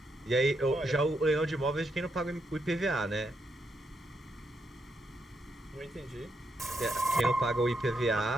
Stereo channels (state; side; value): normal; both; correlation 0.80